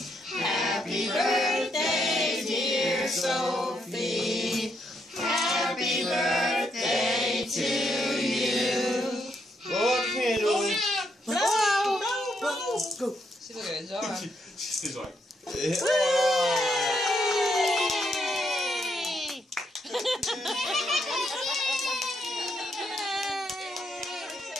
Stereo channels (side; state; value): both; normal; correlation 0.77